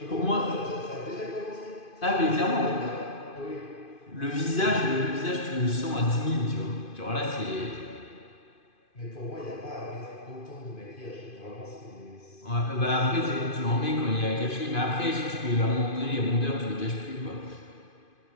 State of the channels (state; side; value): late; right; 2.5 ms